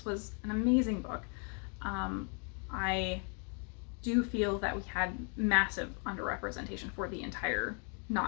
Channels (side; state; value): right; quieter; 39.7 dB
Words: was an amazing book. I do feel that we had massive underrepresentation for the entire